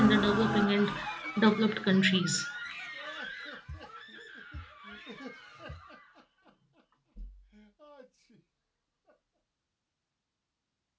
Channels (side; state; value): both; identical; correlation 1.00